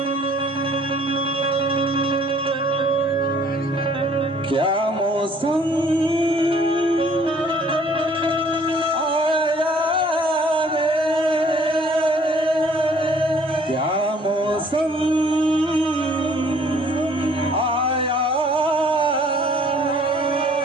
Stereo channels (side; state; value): both; normal; correlation 0.58